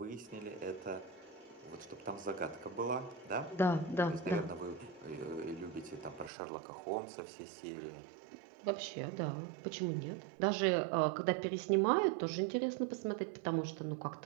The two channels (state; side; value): drops out; left; at 6.3 s